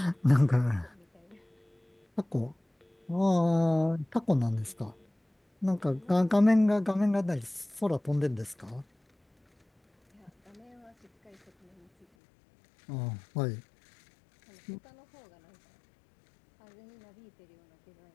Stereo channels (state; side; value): drops out; right; at 12.1 s